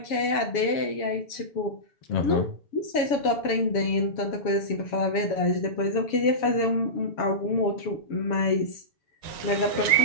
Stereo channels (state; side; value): late; right; 7.2 ms